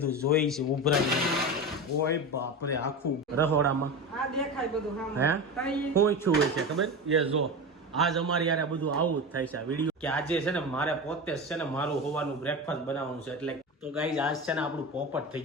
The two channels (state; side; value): normal; both; correlation 0.24